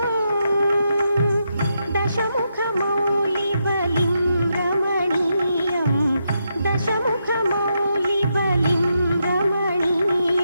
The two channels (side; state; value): both; inverted; correlation -0.82